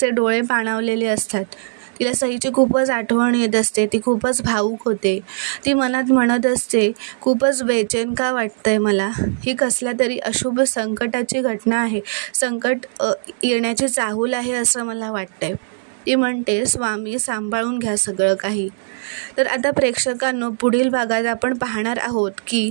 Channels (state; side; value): silent; left; digital silence